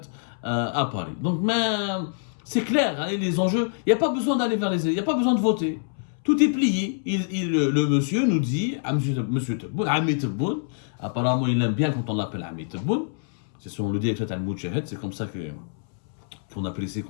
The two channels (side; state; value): right; silent; 61 dB below the other